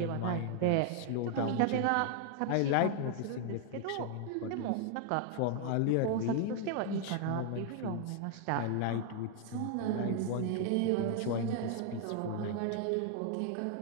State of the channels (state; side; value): different; both; correlation 0.00